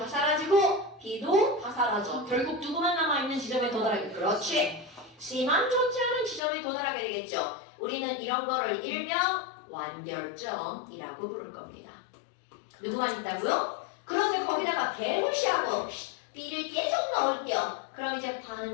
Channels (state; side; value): drops out; right; at 6.4 s